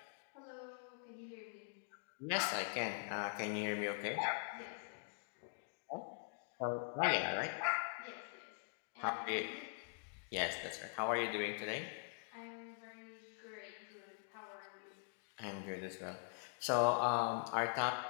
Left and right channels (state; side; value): silent; right; digital silence